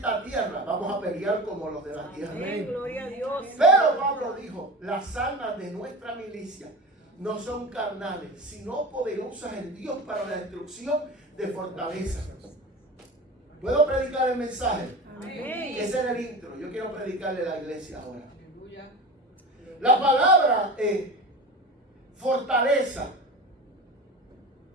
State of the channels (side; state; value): both; normal; correlation 0.31